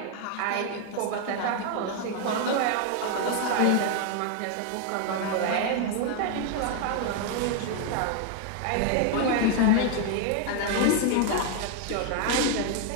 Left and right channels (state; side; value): different; both; correlation 0.00